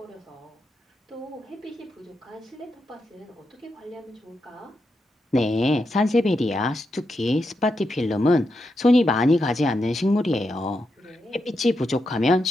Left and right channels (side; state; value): both; normal; correlation 0.85